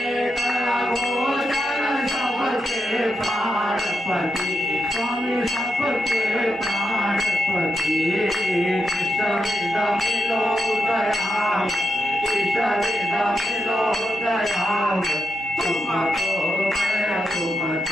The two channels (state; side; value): noise; left; hum, 29 dB below the sound